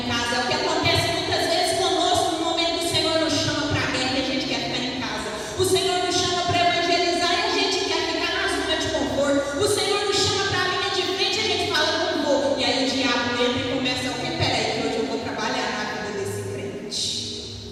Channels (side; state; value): both; identical; correlation 1.00